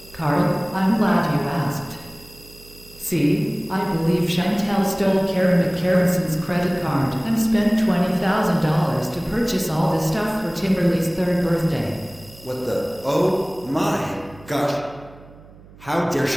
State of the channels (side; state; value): right; noise; hum, 22 dB below the sound